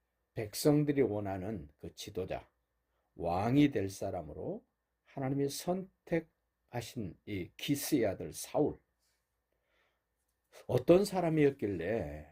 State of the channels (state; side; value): identical; both; correlation 1.00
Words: 백성들이 원하는 그 지도자, 왕이 될 사람으로 하나님이 선택하신 이 기스의 아들 사울, 어떤 사람이었길래